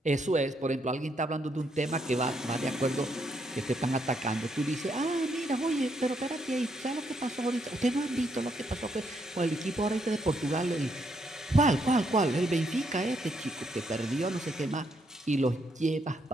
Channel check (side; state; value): both; normal; correlation 0.75